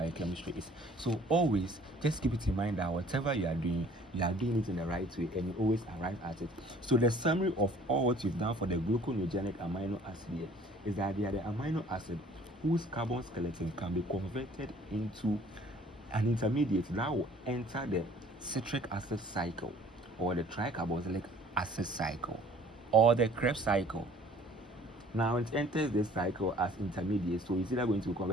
is. So always just keep it in mind that whatever you are doing it in the right way, and you always arrive at it. So the summary of all what you've done for the glucogenic amino acid here is that they are the amino acid whose carbon skeleton can be converted into an intermediate that will enter the citric acid cycle, or the tricarboxylic acid cycle, or the Krebs cycle. Now it enters this cycle as intermediate, so it's either going to be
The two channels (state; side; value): normal; both; correlation 0.54